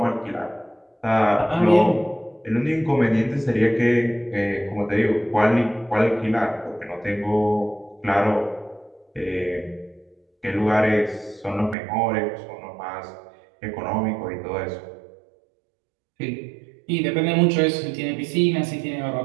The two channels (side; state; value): left; drops out; at 11.8 s